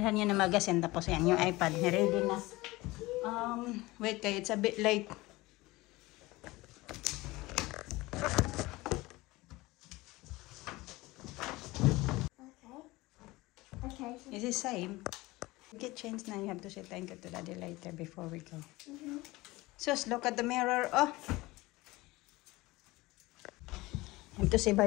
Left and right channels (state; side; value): quieter; right; 20.6 dB